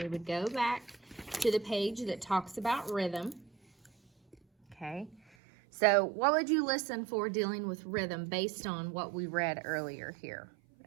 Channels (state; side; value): drops out; left; at 5.2 s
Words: would go back to the page that talks about rhythm. Okay, so what would you listen for dealing with rhythm based on what we read earlier here